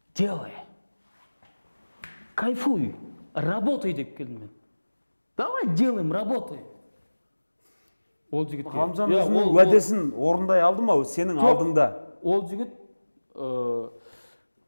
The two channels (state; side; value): inverted; both; correlation -1.00